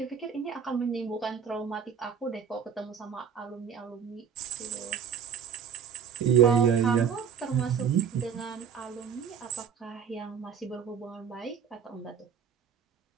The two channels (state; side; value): quieter; left; 7.4 dB